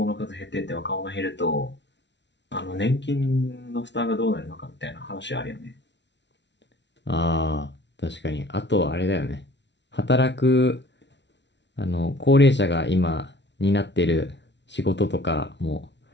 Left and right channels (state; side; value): late; right; 0.51 ms